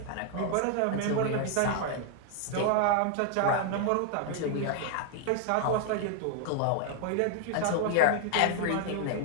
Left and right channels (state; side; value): different; both; correlation 0.00